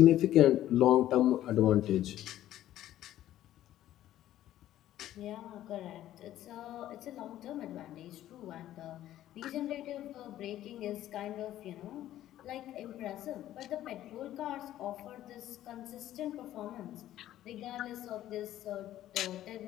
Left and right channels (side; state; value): right; quieter; 13.1 dB